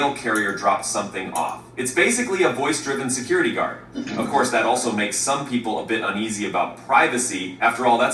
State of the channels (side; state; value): both; identical; correlation 1.00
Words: carrier dropped something off. It's basically a voice-driven security guard. Of course, that also makes some people a bit uneasy about privacy. After all,